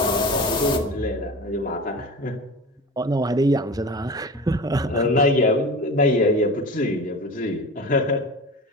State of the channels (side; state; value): both; normal; correlation 0.32